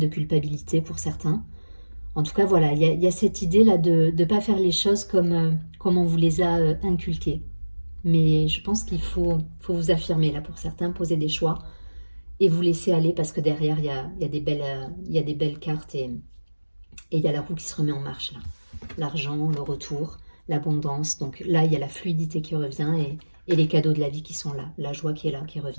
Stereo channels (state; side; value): inverted; both; correlation -1.00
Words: culpabilité pour certains. En tout cas, voilà, il y a cette idée-là de ne pas faire les choses comme on vous les a inculquées. Mais je pense qu'il faut vous affirmer, là, pour certains, poser des choix et vous laisser aller parce que derrière, il y a des belles cartes et il y a la roue qui se remet en marche, là. L'argent, le retour, l'abondance. Donc là, il y a la fluidité qui revient et les cadeaux de la vie qui sont là, la joie qui est là, qui